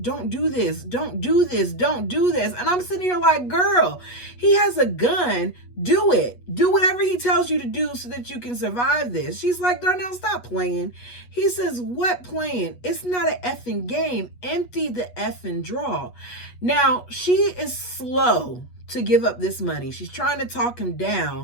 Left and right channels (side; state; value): right; late; 8.3 ms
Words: do this. Don't do this. Don't do this. And I'm sitting here like, girl, he has a gun. Do it. Do whatever he tells you to do so that you can survive this. She's like, Darnell, stop playing. He says, what playing? It's not an effing game. Empty the effing drawer. Now, she is slow to give up this money. She's trying to talk him